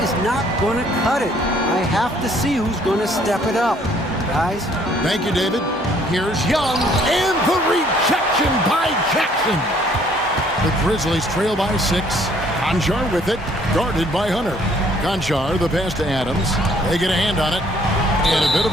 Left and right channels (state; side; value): normal; both; correlation 0.62